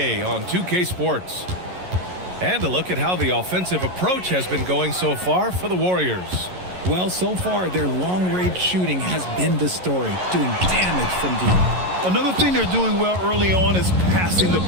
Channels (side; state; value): left; late; 11 ms